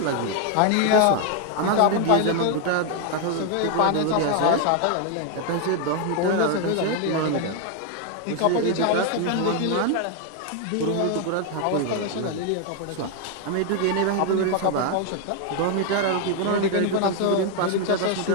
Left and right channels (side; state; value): both; different; correlation 0.01